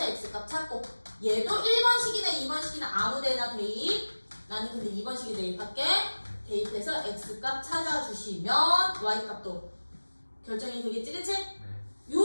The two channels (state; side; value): inverted; both; correlation -1.00